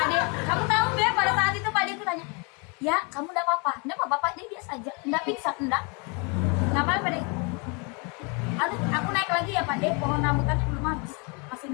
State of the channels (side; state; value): right; quieter; 32.7 dB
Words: De, kamu tahu ya pada saat itu Pak De tuh tanya, ya kamu enggak apa-apa? Enggak apa-apa Pak De, biasa aja. Enggak pingsan, enggak. Ngapain Pak De? Aduh, aku naik lagi ya Pak De, pohon rambutan belum habis. Masih